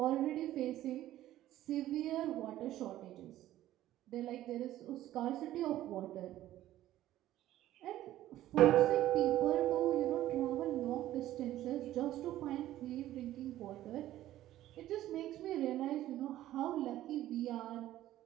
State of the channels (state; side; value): quieter; left; 13.9 dB